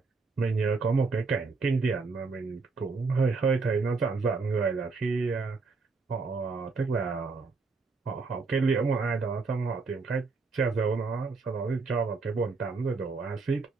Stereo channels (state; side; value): quieter; left; 4.3 dB